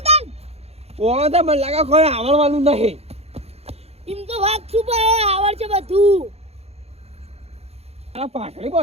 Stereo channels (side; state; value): left; late; 0.30 ms